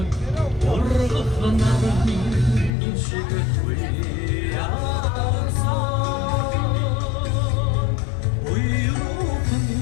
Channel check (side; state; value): right; drops out; at 2.7 s